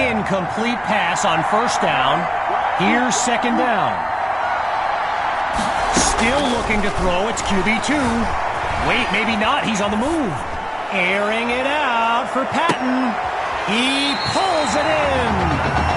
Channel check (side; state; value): both; identical; correlation 1.00